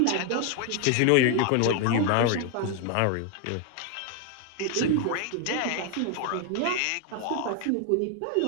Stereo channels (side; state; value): both; different; correlation 0.01